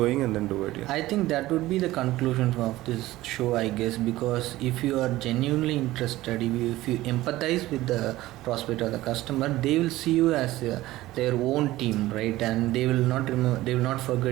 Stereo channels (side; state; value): left; quieter; 16.9 dB